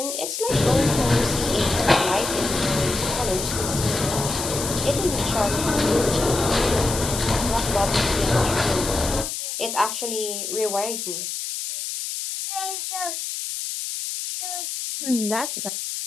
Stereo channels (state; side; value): noise; left; hiss, 5 dB below the sound